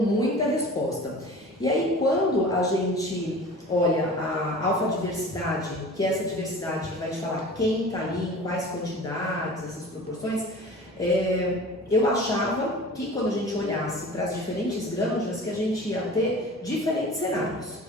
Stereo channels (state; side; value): normal; both; correlation 0.40